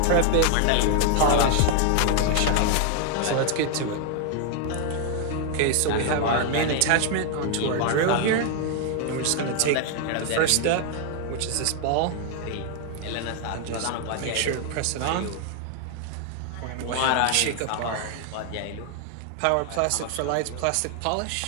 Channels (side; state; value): both; different; correlation 0.00